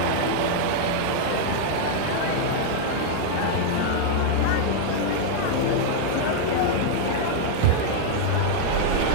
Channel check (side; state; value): both; different; correlation -0.01